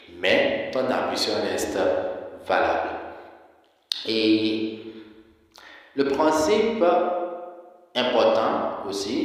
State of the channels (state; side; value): identical; both; correlation 1.00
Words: mais ton ablution reste valable. Et le principe important